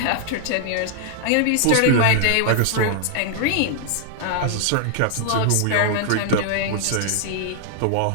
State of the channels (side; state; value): both; different; correlation -0.01